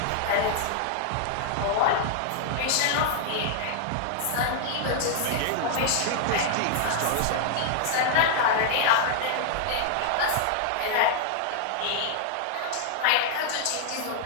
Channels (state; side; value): different; both; correlation -0.01